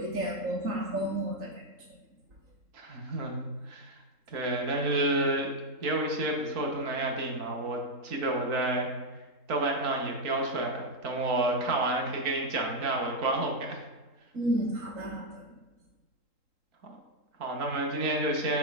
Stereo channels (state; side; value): late; left; 3.8 ms